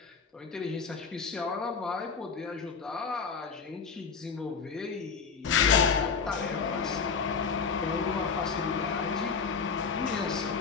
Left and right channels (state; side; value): quieter; right; 5.6 dB